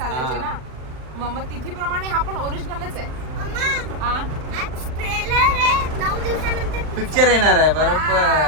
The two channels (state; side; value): late; left; 39 ms